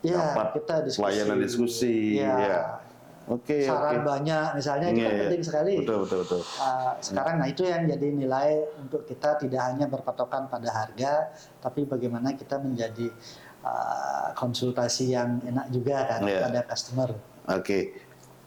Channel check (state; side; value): identical; both; correlation 1.00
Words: Ya, dapat kita diskusi. Pelayanan diskusi. Ya. Saran banyak misalnya itu kan penting sekali. Betul. Sekarang nah itu yang jadi nilai untuk kita tidak hanya berpatokan pada harga, tapi bagaimana kita menjadi konsultasi yang enak juga kan pada customer.